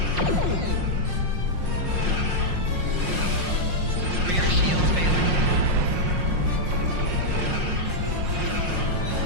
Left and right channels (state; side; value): late; left; 5.6 ms